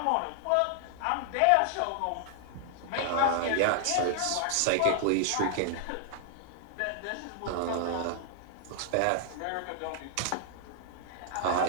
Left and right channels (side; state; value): both; different; correlation 0.00